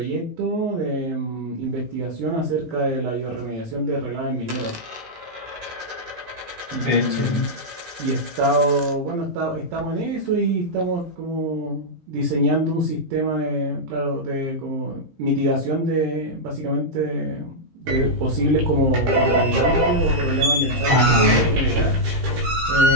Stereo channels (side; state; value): left; late; 17 ms